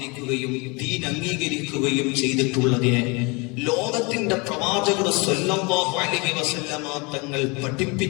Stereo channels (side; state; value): right; quieter; 28.6 dB